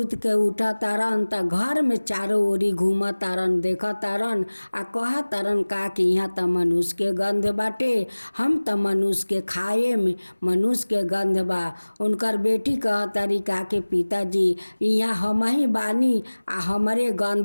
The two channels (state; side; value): inverted; both; correlation -1.00